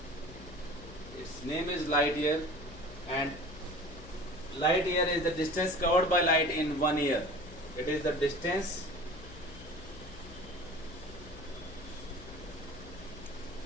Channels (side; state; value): left; noise; hum, 16 dB below the sound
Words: Its name is light year, and light year is the distance covered by light in 1 year. It is the distance